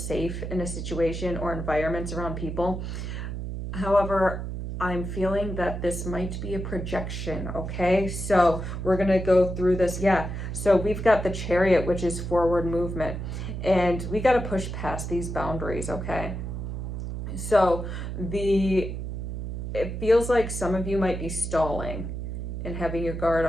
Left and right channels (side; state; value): right; noise; hum, 5 dB below the sound